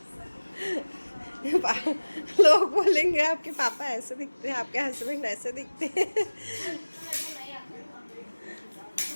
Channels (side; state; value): both; inverted; correlation -1.00